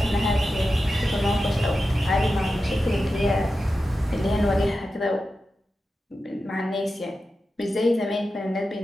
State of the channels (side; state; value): both; normal; correlation 0.92